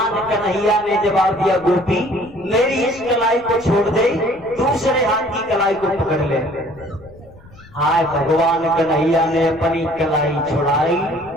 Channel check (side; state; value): left; noise; rumble, 23 dB below the sound